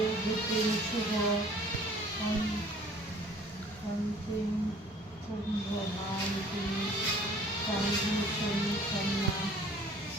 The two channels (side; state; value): both; normal; correlation 0.52